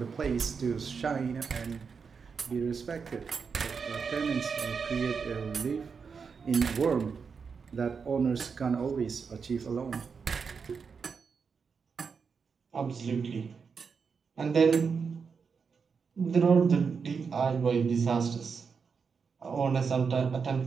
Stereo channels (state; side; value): quieter; left; 5.7 dB